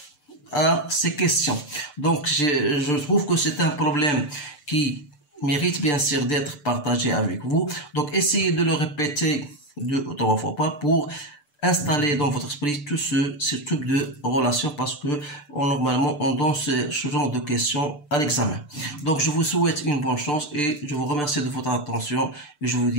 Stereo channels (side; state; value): right; late; 6.8 ms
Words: à ces questions. Donc, je trouve que c'est un problème qui mérite bien sûr d'être partagé avec vous. Donc, essayez de le répéter 2 ou 3 fois pour installer dans votre esprit tout ce type de relation, parce que normalement on donne ce genre de questions à l'examen. Donc, je vous souhaite une bonne chance et je vous remercie de votre attention et je vous